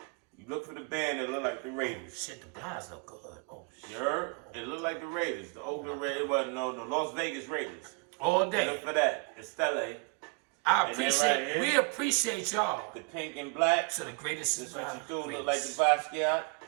you look for the band that look like the Raiders. Shit, the blinds look good. Oh, shit. You heard? It look like the Raiders. The Oakland Raiders. Well, no, the Las Vegas Raiders. All Look day. for that. The Stella, I And then appreciate, right here. we appreciate y'all the pink and black. to the greatest. This what you do. Look greatest. like the Basquiat.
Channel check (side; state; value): left; quieter; 33.2 dB